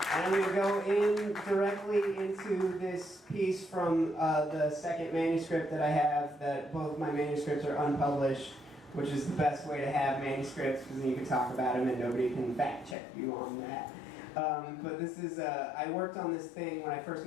And I'm going to go in directly into this piece from the second manuscript that I have, that both my manuscripts are unpublished, which is the best way to have manuscripts, because then you can talk about them and nobody can fact check you on that. But this is, I worked on this thing when I first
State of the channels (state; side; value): drops out; right; at 13.0 s